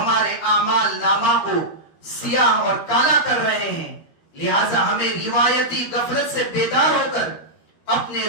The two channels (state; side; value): late; right; 13 ms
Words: اعمال نامہ کو سیاہ اور کالا کر رہے ہیں، لہٰذا ہمیں روایتی غفلت سے بیدار ہو کر اپنے